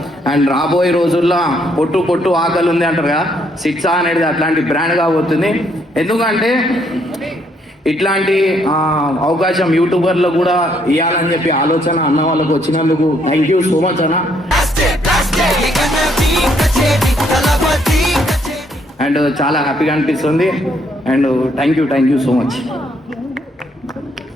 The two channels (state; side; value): normal; both; correlation 0.70